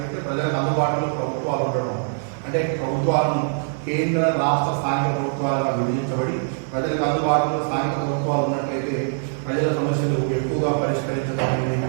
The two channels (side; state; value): left; silent; 63 dB below the other